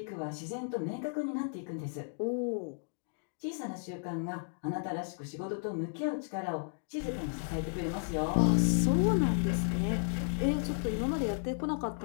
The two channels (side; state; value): right; silent; digital silence